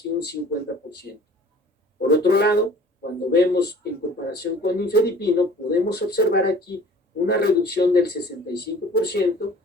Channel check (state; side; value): normal; both; correlation 0.48